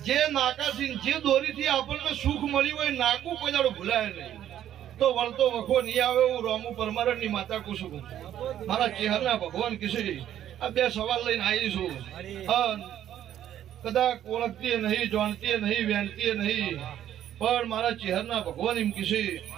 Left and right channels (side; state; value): left; quieter; 11.2 dB